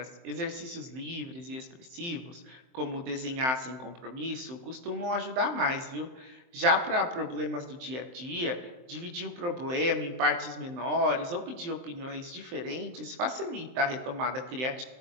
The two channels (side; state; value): left; late; 23 ms